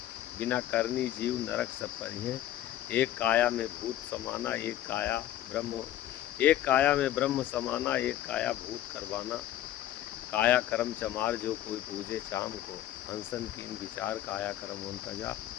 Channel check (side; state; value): right; quieter; 12.8 dB